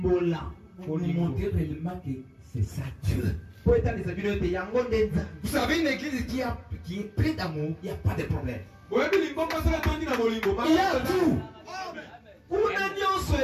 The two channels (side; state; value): both; identical; correlation 1.00